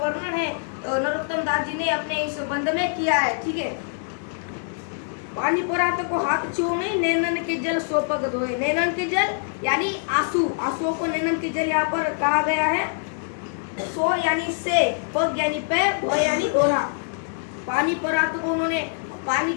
है नरोत्तम दास जी ने अपने इस बंध में किया है। ठीक है, पानी परात को हाथ छू नहीं, नैनन के जल सो पग धोए। नैनन के जल यानी आंसू, आंसुओं को नैनन के जल यहाँ पर कहा गया है। सो यानी से, पग यानी पैर, धोए यानी धोना। पानी परात को उन्होंने पानी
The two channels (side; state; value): right; silent; digital silence